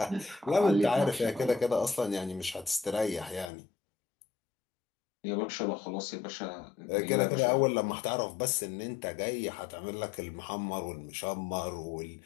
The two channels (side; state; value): right; drops out; at 3.5 s